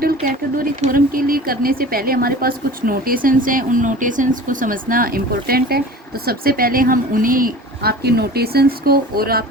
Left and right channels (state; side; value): normal; both; correlation 0.39